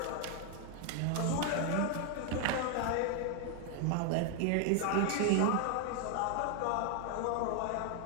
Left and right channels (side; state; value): both; different; correlation 0.00